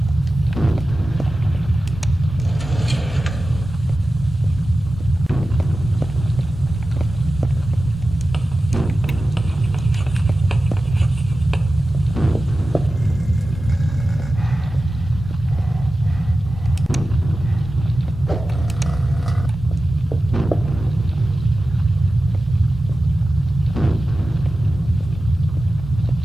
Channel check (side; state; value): both; normal; correlation 0.94